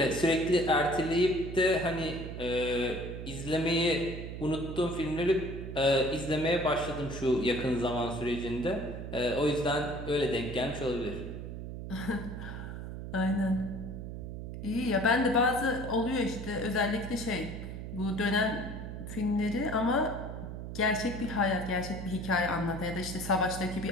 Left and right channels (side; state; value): right; noise; hum, 8 dB below the sound